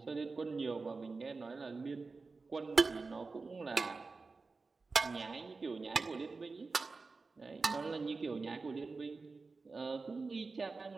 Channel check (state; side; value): quieter; left; 4.1 dB